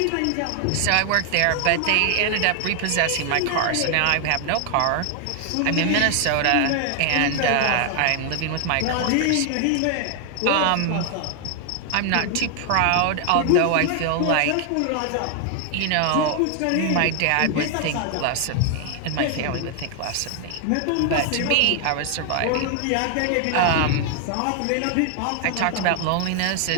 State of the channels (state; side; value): different; both; correlation 0.00